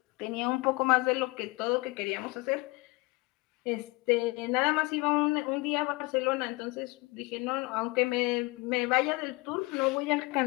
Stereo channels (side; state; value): right; quieter; 24.8 dB